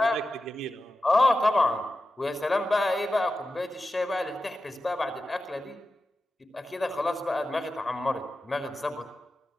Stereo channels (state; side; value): normal; both; correlation 0.92